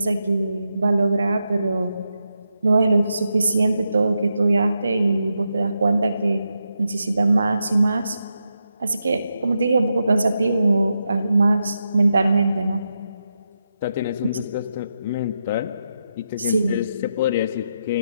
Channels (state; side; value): inverted; both; correlation -0.85